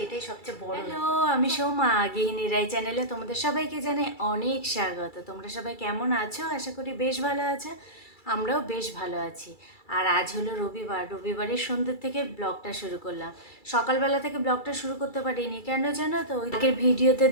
এটাই সবচেয়ে বড়। হ্যালো, আমি সৌমা, গৃহিণী রাই চ্যানেলে তোমাদের সবাইকে জানাই অনেক স্বাগত। তোমরা সবাই কেমন আছো? আশা করি বেশ ভালো আছো। আমরাও বেশ ভালো আছি। আর আজ হলো রবিবার, রবিবারের সন্ধ্যে থেকে ব্লগটা শুরু করলাম। সকালবেলা থেকে ব্লগটা শুরু করতে পারিনি, কেন জানো তো? ওই আগের ভিডিওতে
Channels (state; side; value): late; right; 2.3 ms